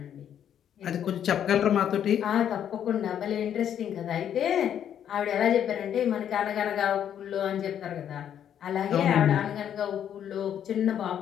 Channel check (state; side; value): quieter; right; 9.5 dB